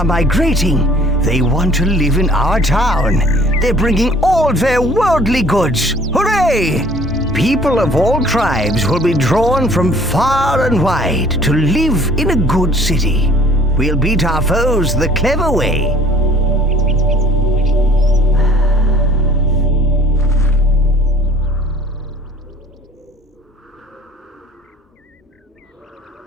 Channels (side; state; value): both; normal; correlation 0.53